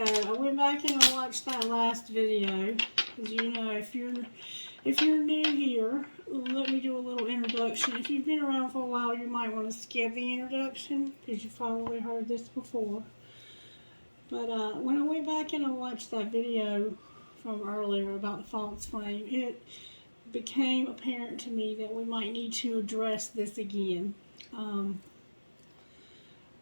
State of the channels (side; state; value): both; inverted; correlation -1.00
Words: I went back and I watched that last video. As you know, if you're new here, let me do a little introduction. If you've been around for a while, you might want to skip the introduction because you've probably heard this before. But when I went back and I watched that video from earlier about the false flame, it became apparent to me that we might need to address this again.